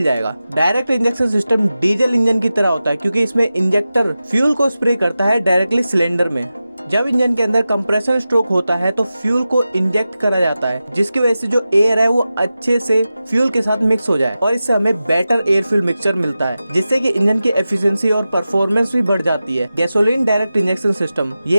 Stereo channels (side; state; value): both; inverted; correlation -0.93